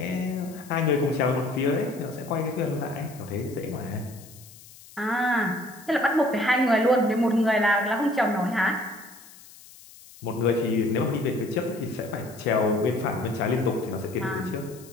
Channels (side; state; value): left; noise; hiss, 21 dB below the sound